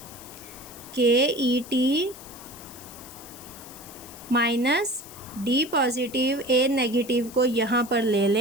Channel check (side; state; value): left; noise; hiss, 17 dB below the sound